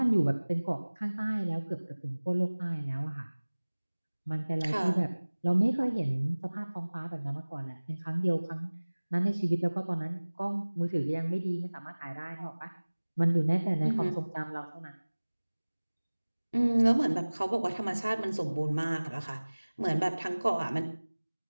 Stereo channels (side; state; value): both; inverted; correlation -1.00